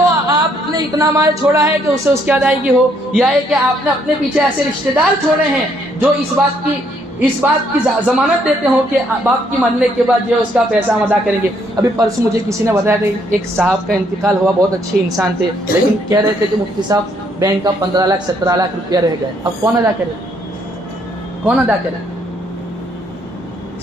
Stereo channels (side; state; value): both; normal; correlation 0.69